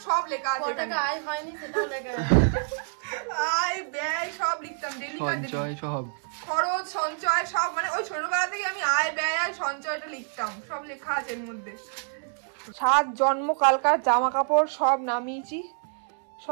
সব লেখা আছে। টাকা আয় হয়নি সেটাও লেখা আছে। আয় ব্যয় সব লিখতাম, ডেলি সব খরচ সঞ্চয় সব, মানে ওই ছোটবেলা থেকে আমি আয় ব্যয় আর সঞ্চয়টা লিখতাম, সব লেখা আছে এর মধ্যে। 7 জন্মকালকার জামা কাপড় সব নামিয়েছি,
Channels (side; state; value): left; silent; 59 dB below the other